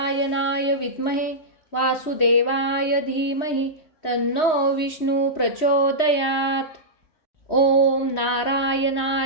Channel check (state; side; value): late; right; 3.1 ms